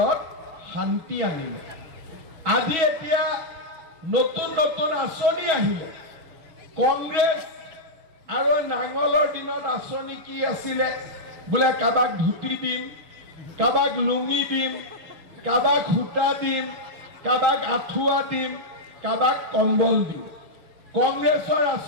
শান্তি আনিলে। আজি এতিয়া নতুন নতুন আঁচনি আহিলে। কংগ্ৰেছ আৰু নাঙলৰ দিনত আঁচনি কি আছিলে? বোলে কাৰোবাক ধুতি দিম, কাৰোবাক লুঙি দিম, কাৰোবাক সূতা দিম, কাৰোবাক আঁঠুৱা দিম, কাৰোবাক কম্বল দিম। কংগ্ৰেছৰ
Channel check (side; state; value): left; late; 6.2 ms